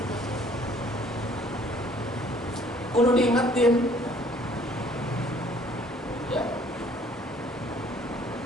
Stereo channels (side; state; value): both; normal; correlation 0.58